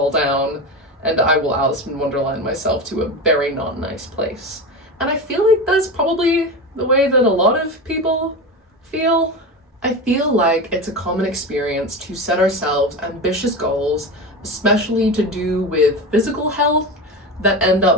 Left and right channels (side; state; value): both; normal; correlation 0.23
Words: down, and I will Alice in Wonderland myself to a very not nice place. And I feel like that's probably the way that a lot of people feel. I feel like it's a common experience to set ourselves ambitious goals, especially to do with physical health, that end